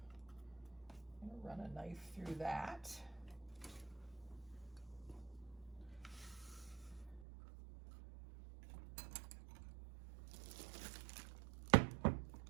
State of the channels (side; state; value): left; drops out; at 7.2 s